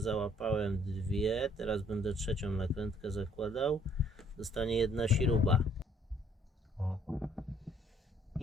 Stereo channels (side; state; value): both; normal; correlation 0.63